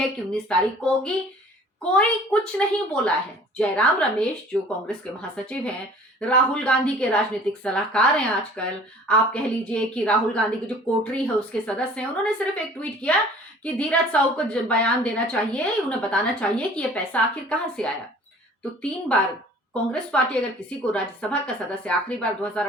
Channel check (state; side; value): normal; both; correlation 0.49